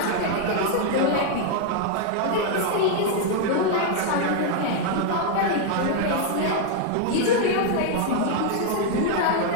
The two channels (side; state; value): both; different; correlation 0.00